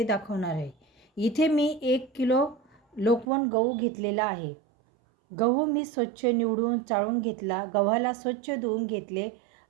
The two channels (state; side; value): drops out; left; at 3.2 s